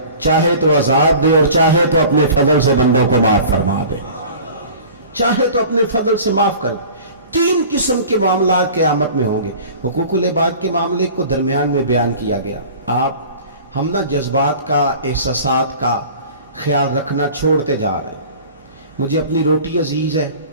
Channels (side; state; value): both; inverted; correlation -0.42